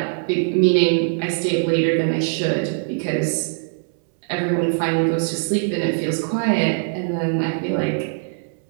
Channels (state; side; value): silent; left; 65 dB below the other